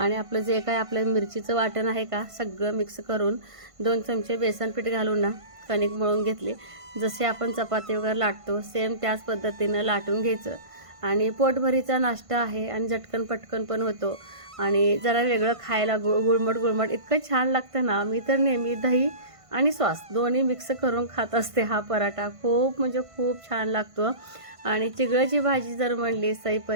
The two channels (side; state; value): left; late; 1.5 ms